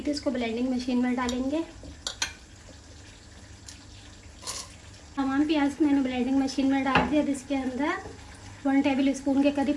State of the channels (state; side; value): identical; both; correlation 1.00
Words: थी इसको ब्लेंडिंग मशीन में डालेंगे। तमाम प्याज मैंने ब्लेंडिंग मशीन में डाल दिया। अब इसके अंदर 1 टेबल स्पून के